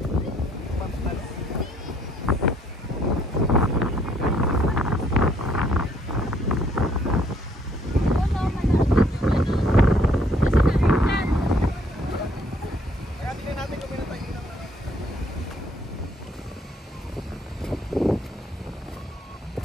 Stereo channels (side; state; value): both; normal; correlation 0.66